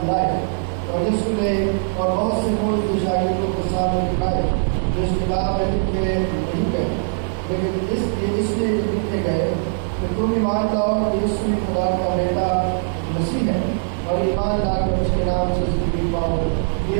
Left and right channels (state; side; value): silent; left; digital silence